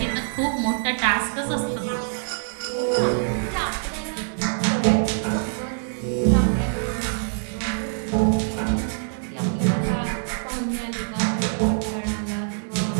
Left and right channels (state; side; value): silent; left; 62 dB below the other